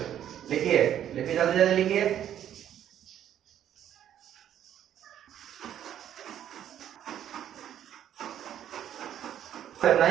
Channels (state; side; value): quieter; left; 10.5 dB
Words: लिखिए जल्दी जल्दी लिखिए।